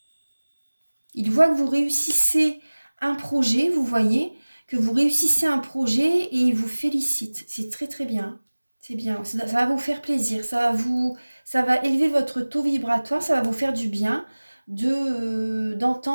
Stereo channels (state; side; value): inverted; both; correlation -1.00